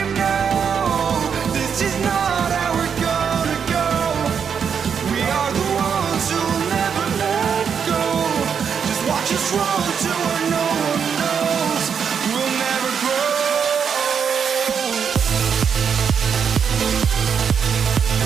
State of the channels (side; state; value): left; quieter; 7.0 dB